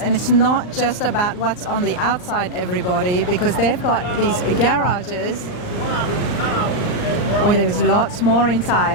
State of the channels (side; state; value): right; late; 39 ms